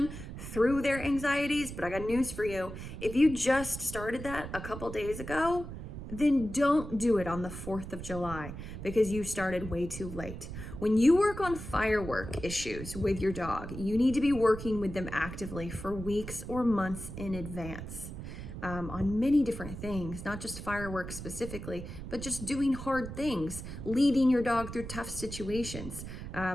through their anxieties, but I got news for you. If you just started that a couple days ago, then don't do it on the 4th of July because you started way too late. When you work on firework issues with your dog, you need to be working with them actively for weeks or months in advance on many different things, not just fireworks specifically, but just doing hard things, leading your dog through tough situations,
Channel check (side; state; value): right; noise; rumble, 9 dB below the sound